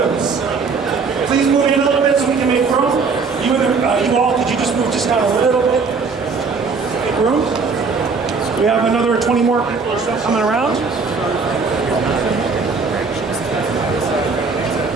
Please move in a little bit so we can make room. You all, could you just move just down a little bit? Make room. We have another 20 more people or so coming around.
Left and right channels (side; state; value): left; quieter; 4.8 dB